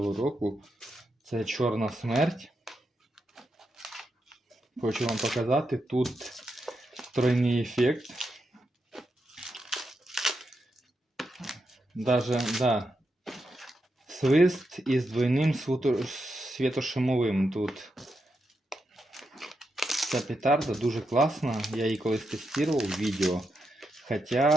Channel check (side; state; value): both; normal; correlation 0.85